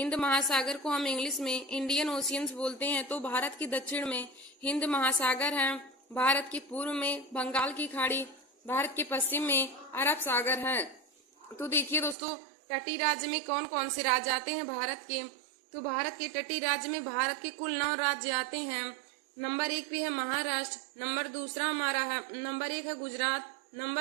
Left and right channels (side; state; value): left; drops out; at 12.2 s